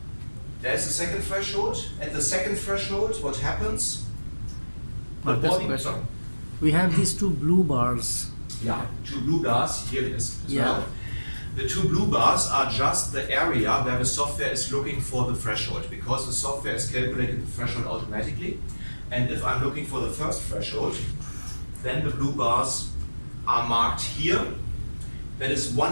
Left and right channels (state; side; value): inverted; both; correlation -1.00